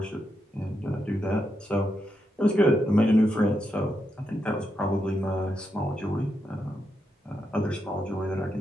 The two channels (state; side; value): normal; both; correlation 0.83